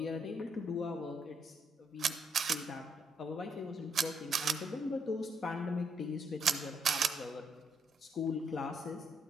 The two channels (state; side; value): normal; both; correlation 0.73